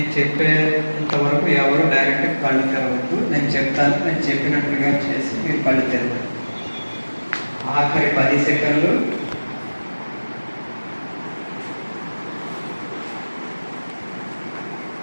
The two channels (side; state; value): both; inverted; correlation -1.00